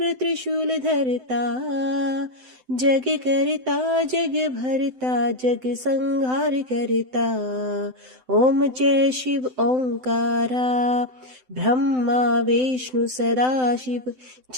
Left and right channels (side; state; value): left; late; 7.8 ms